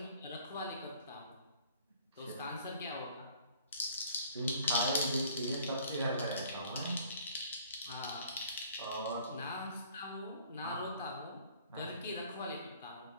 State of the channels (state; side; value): inverted; both; correlation -0.54